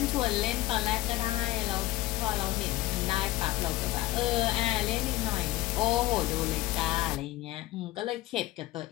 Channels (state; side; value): quieter; right; 16.7 dB